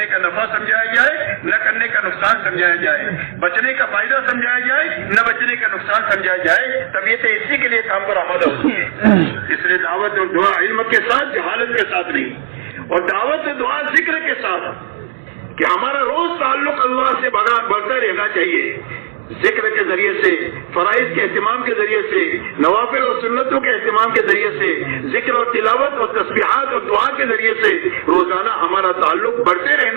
کا نفع سمجھایا جائے, نہ کرنے کا نقصان سمجھایا جائے, بچنے کا فائدہ سمجھایا جائے, نہ بچنے کا نقصان سمجھایا جائے. طبیعتیں اسی کے لیے کام پر آمادہ ہوتی ہے. اس لیے دعوت اور دعا علم کے ساتھ, جہالت کے ساتھ نہیں, اور دعوت اور دعا ذکر کے ساتھ, کہ ہمارا روز تعلق اللہ سے بڑھتا رہنا چاہیے. ذکر کے ذریعے سے, فرائض کے اہتمام کے ذریعے سے, نوافل اور سنتوں کے اہتمام کے ذریعے سے, ذکر اور تلاوت اور تسبیحات اور دعا کے ذریعے سے روزانہ ہمارا تعلق بڑھتے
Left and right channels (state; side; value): silent; left; 67 dB below the other